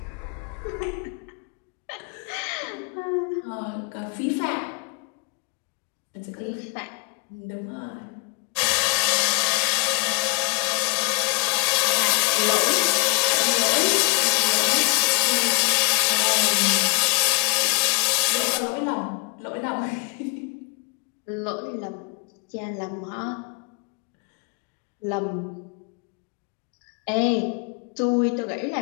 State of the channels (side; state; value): right; quieter; 31.2 dB